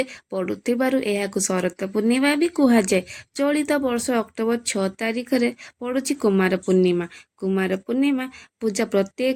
ପଡ଼ୁଥିବାରୁ ଏହାକୁ ଶରତ ପୂର୍ଣ୍ଣିମା ବି କୁହାଯାଏ। ଚଳିତ ବର୍ଷ ଅକ୍ଟୋବର 6 ତାରିଖରେ ପଡ଼ୁଛି କୁମାର ପୂର୍ଣ୍ଣିମା। କୁମାର ପୂର୍ଣ୍ଣିମା ପୂଜା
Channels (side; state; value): both; identical; correlation 1.00